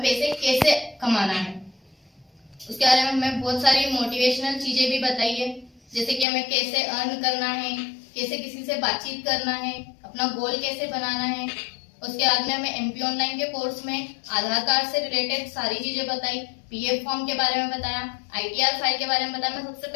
पैसे कैसे कमाना है। उसके बारे में हमें बहुत सारी मोटिवेशनल चीजें भी बताई है, जैसे कि हमें कैसे अर्न करना है, कैसे किसी से बातचीत करना है, अपना गोल कैसे बनाना है। उसके बाद में हमें एमपी ऑनलाइन के कोर्स में आधार कार्ड से रिलेटेड सारी चीजें बताई, पीएफ फॉर्म के बारे में बताया, आईटीआर फाइल के बारे में बताया। मैं सबसे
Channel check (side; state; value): right; drops out; at 6.2 s